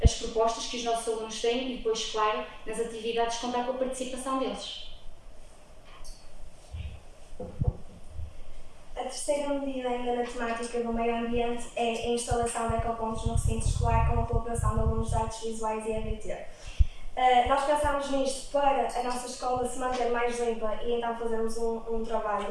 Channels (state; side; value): identical; both; correlation 1.00